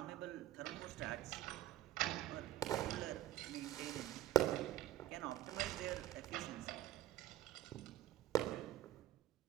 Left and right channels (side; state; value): left; quieter; 13.7 dB